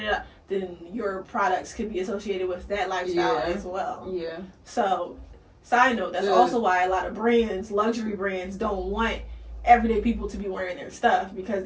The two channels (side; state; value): both; identical; correlation 1.00